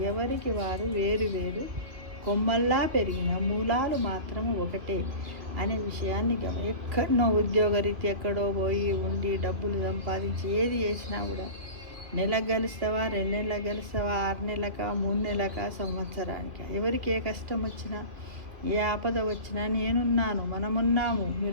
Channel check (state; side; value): late; left; 2.6 ms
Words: ఎవరికి వారు వేరు వేరు కొమ్మల్లా పెరిగిన మూలాలు మాత్రం ఒకటే అనే విషయాన్ని ఎక్కడో ఉద్యోగరీతి ఎక్కడో పోయి ఉండి డబ్బులు సంపాదించి ఏది చేసినా కూడా నెలకు గెలుస్తావా, 2 నెలలకు గెలుస్తావా, 6 నెలలకా, 3 నెలలకా, సంవత్సరానికి ఎవరికి ఏ కష్టం వచ్చినా ఏ ఆపద వచ్చినా నేనున్నాను, మనమున్నాము,